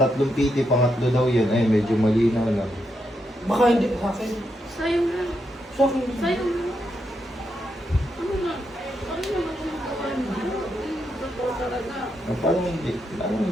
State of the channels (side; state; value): both; normal; correlation 0.82